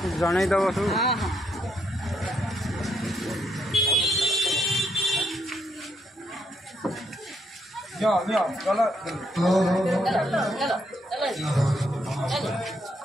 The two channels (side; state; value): both; normal; correlation 0.75